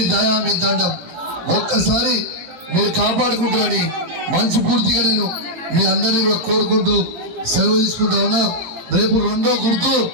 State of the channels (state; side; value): late; left; 18 ms